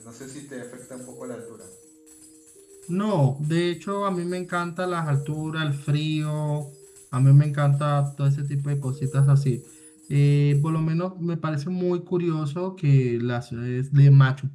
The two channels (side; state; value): both; identical; correlation 1.00